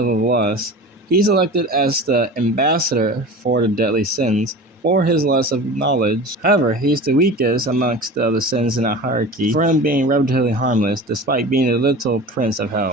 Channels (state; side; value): normal; both; correlation 0.35